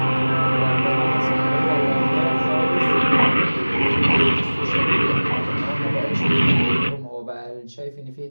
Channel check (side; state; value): both; inverted; correlation -1.00